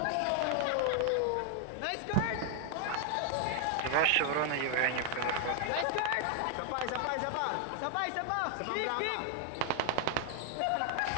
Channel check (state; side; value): different; both; correlation 0.00